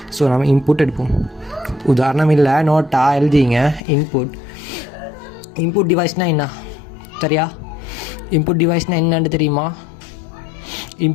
ஸோ நம்ம இன்புட் எடுப்போம். உதாரணம் இல்லை, நோட்டாக எழுதிங்க. இன்புட் டிவைஸ்னால் என்ன? சரியா? இன்புட் டிவைஸ்னால் என்னன்னு தெரியுமா?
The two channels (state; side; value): drops out; right; at 3.8 s